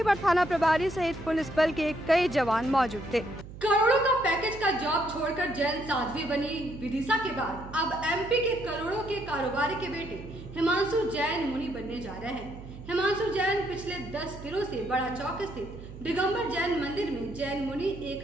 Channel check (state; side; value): noise; right; hum, 14 dB below the sound